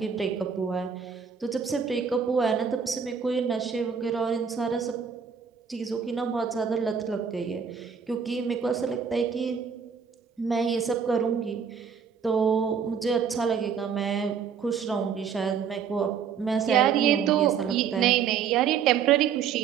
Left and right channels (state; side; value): quieter; left; 6.9 dB